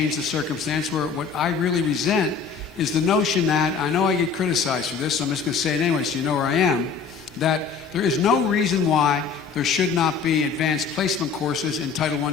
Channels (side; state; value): right; quieter; 5.7 dB